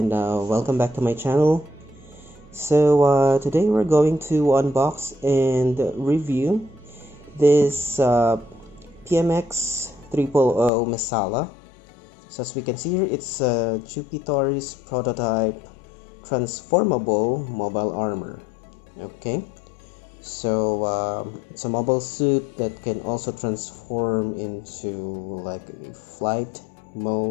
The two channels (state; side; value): drops out; right; at 10.7 s